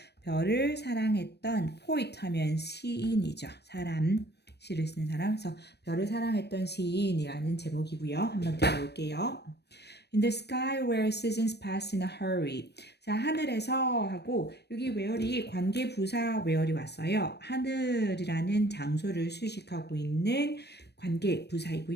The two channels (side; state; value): right; late; 0.49 ms